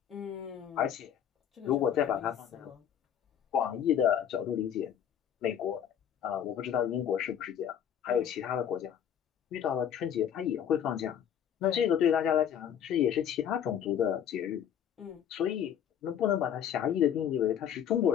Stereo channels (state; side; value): quieter; right; 9.3 dB